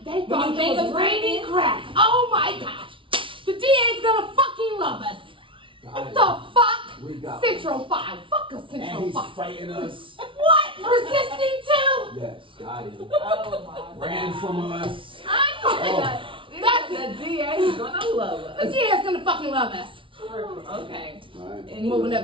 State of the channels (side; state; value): left; late; 0.25 ms